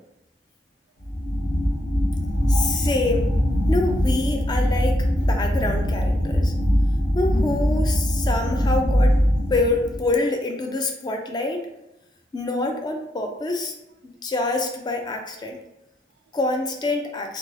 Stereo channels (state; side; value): normal; both; correlation 0.78